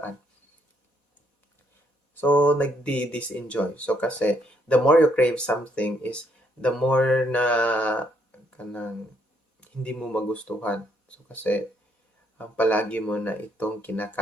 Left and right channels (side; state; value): right; late; 4.1 ms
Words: So nagdi-disenjoy. So kasi the more you crave something is the more na kanang hindi mo magustuhan. So kasi palagi mo na itong